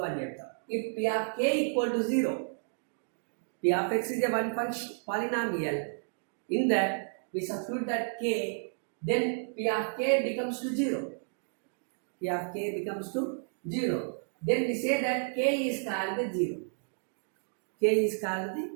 అని చెప్తాం. If p of k equal to 0, p of x is a one function polynomial, in that we substitute that k, then p of k becomes to 0. P of k becomes to 0. Then we say that k is called the 0. K is called the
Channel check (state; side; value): silent; left; digital silence